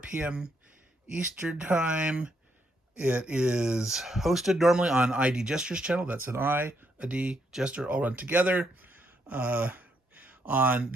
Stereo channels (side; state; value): both; normal; correlation 0.75